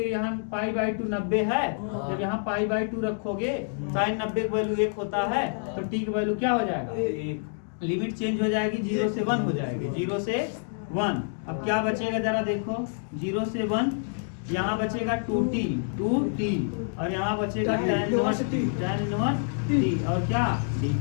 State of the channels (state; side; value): silent; right; digital silence